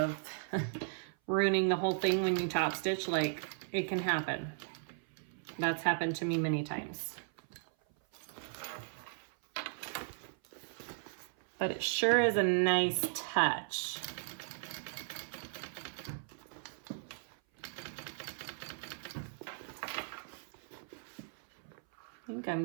ruining the whole thing when you top stitch, like, it can happen. That's happened to me many times. but it sure is a nice touch. I think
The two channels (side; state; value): left; silent; 53 dB below the other